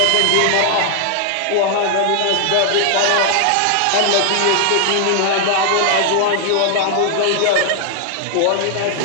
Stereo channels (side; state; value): both; different; correlation 0.00